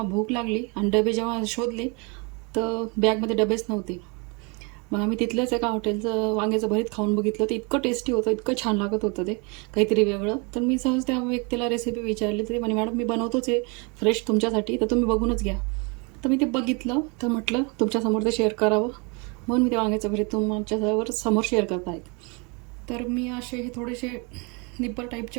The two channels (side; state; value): left; quieter; 31.4 dB